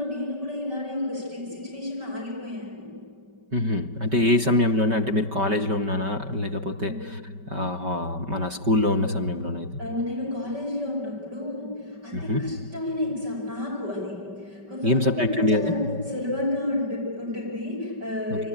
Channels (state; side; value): late; left; 5.2 ms